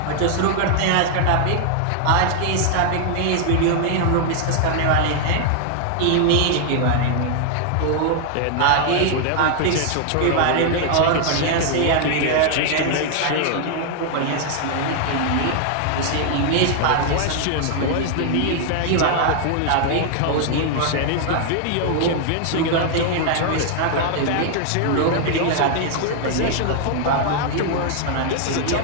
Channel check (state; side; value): different; both; correlation 0.00